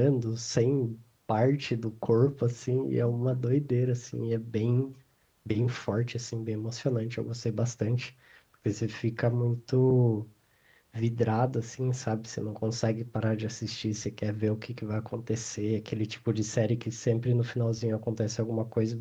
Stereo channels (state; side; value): identical; both; correlation 1.00